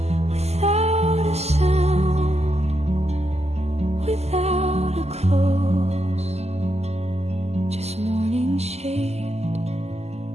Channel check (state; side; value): late; left; 0.31 ms